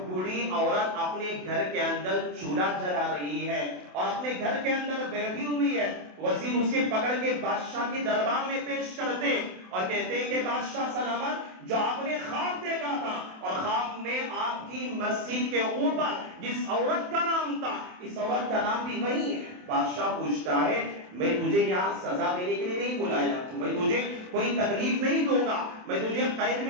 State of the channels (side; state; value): left; late; 27 ms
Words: بوڑھی عورت اپنے گھر کے اندر چولہا جلا رہی ہے اور اپنے گھر کے اندر بیٹھی ہوئی ہے۔ وزیر اسے پکڑ کے بادشاہ کے دربار میں پیش کرتے اور کہتے ہیں کہ بادشاہ سلامت جو آپ نے خواب دیکھا تھا اور خواب میں آپ آپ کی مسجد کے اوپر جس عورت کا نام تھا اس عورت کا نام بھی وہی ہے۔ بادشاہ پوچھتا ہے میں تجھے یہاں سزا دینے کے لیے نہیں بلایا، میں تجھے کوئی تکلیف نہیں دوں گا، میں تجھے قید